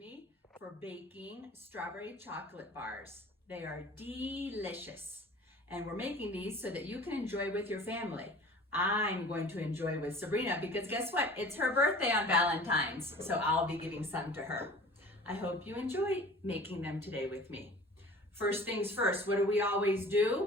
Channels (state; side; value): normal; both; correlation 0.44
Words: for baking strawberry chocolate bars. They are delicious. And we're making these so that you can enjoy with your family. I'm going to enjoy with Sabrina because guess what? It's her birthday on Valentine's, so I'll be giving some to her. I hope you enjoy making them today with me. First things first, what do we always